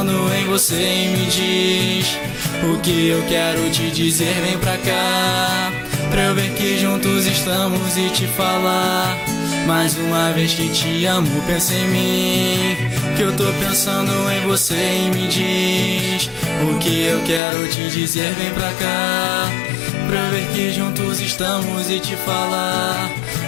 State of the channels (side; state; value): right; drops out; at 17.4 s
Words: em você, e me diz o que eu quero te dizer. Vem pra cá, pra eu ver que juntos estamos e te falar mais uma vez que te amo. Pensa em mim, que eu tô pensando em você, e me diz o que eu quero te dizer. Vem pra cá, pra eu ver que juntos estamos e te falar